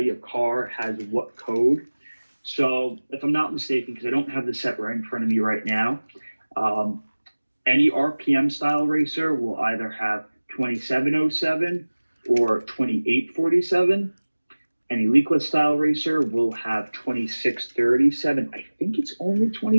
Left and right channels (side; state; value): both; inverted; correlation -1.00